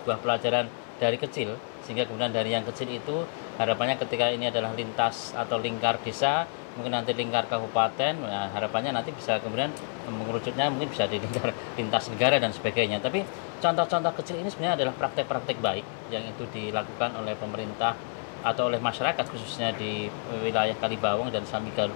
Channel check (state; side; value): silent; right; 59 dB below the other